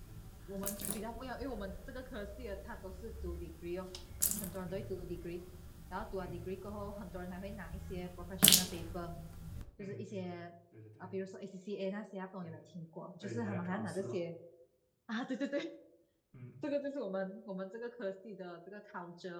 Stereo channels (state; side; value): identical; both; correlation 1.00